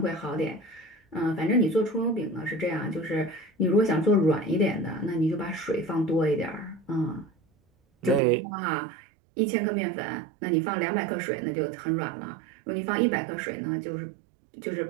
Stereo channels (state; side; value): drops out; left; at 8.2 s